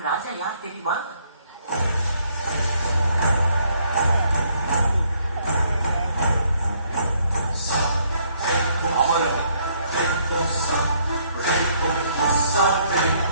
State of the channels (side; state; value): both; inverted; correlation -0.68